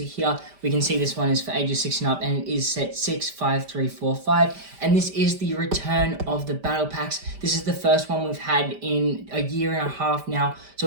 here, we can see this one is for ages 6 and up, and it is set 65345, and this is the return of the battle packs. This is the first one we've had in a year and a half now,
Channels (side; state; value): left; late; 5.1 ms